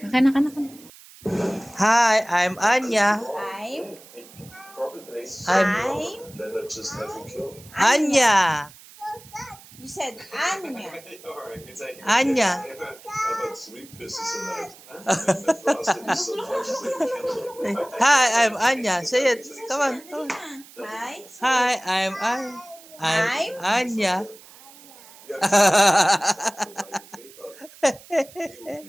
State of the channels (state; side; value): noise; right; hiss, 21 dB below the sound